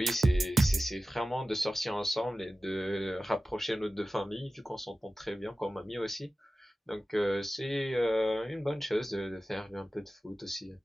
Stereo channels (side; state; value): both; normal; correlation 0.95